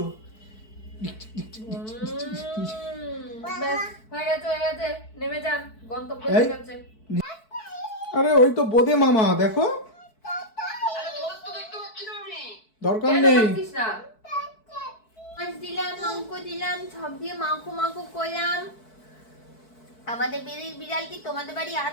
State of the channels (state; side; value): late; right; 4.6 ms